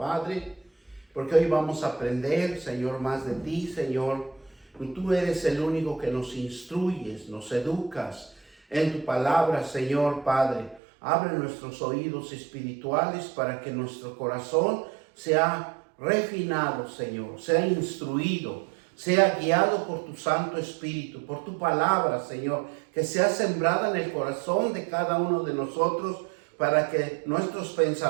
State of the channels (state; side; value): drops out; left; at 10.8 s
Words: porque hoy vamos a aprender, Señor, más de ti, Señor. Tú eres el único que nos instruyes, nos educas en tu palabra, Señor Padre. Abre nuestros oídos espirituales para que nuestro corazón sea refinado, Señor, sea instruido, sea guiado por tu Santo Espíritu, por tu palabra, Señor, que sea sembrada en el corazón de cada uno de nosotros para que nuestros